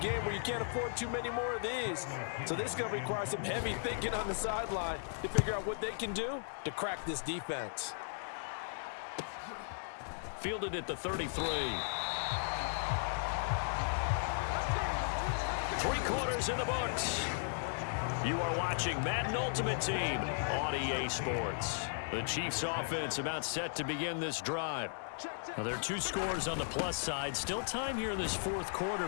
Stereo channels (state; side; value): silent; right; digital silence